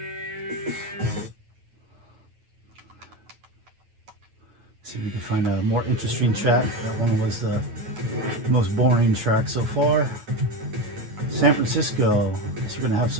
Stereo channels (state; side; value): late; left; 9.2 ms